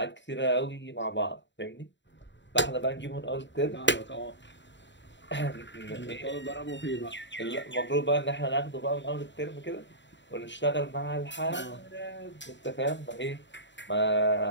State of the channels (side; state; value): right; late; 0.53 ms